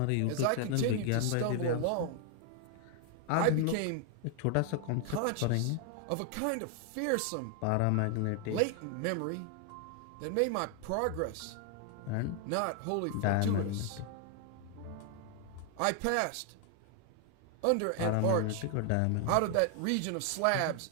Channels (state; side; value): different; both; correlation 0.00